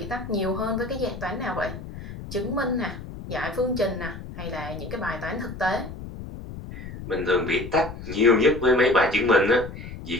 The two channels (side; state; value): left; noise; rumble, 11 dB below the sound